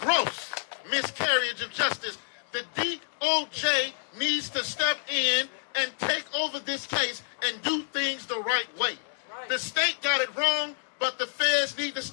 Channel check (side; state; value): right; silent; digital silence